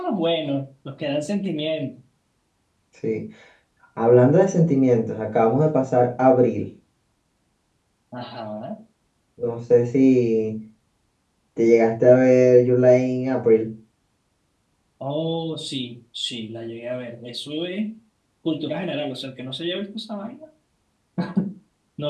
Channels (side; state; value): both; identical; correlation 1.00